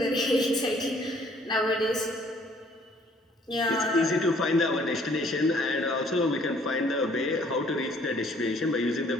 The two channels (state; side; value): normal; both; correlation 0.60